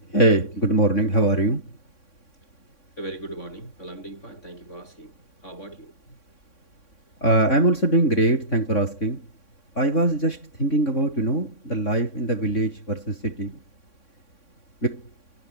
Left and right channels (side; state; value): right; late; 3.6 ms